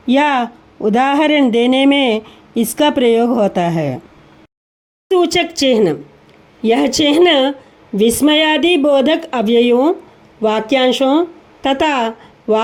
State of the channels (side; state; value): both; identical; correlation 1.00